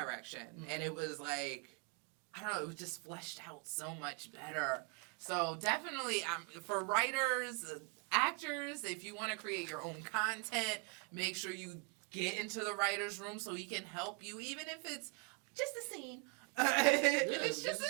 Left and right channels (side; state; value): left; quieter; 34.8 dB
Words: And it was like, I don't know, it was just fleshed out so much better. So definitely, for writers, actors, if you want to create your own content, make sure you get into the writer's room so he can help you, even if it's just a scene. If it's just a